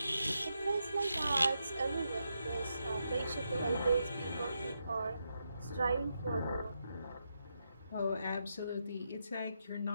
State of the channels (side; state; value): both; inverted; correlation -0.84